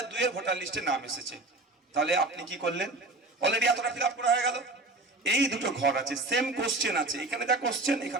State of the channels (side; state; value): left; quieter; 3.0 dB